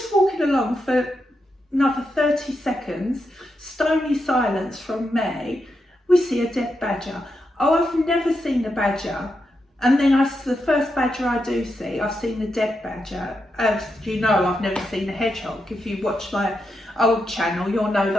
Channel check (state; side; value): normal; both; correlation 0.85